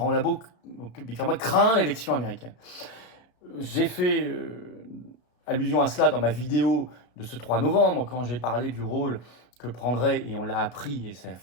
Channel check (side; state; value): right; late; 34 ms